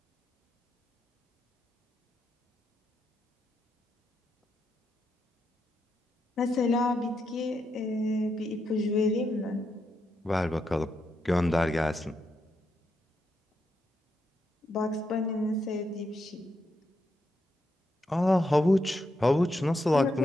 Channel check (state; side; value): normal; both; correlation 0.82